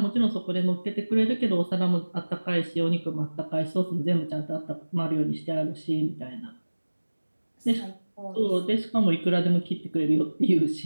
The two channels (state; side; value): inverted; both; correlation -1.00